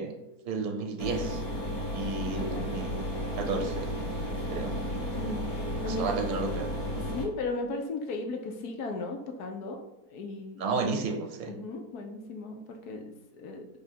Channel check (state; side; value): late; right; 4.5 ms